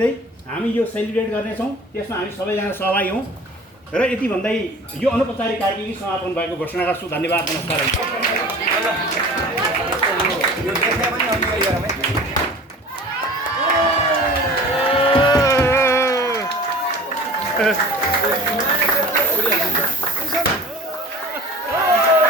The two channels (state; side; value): normal; both; correlation 0.41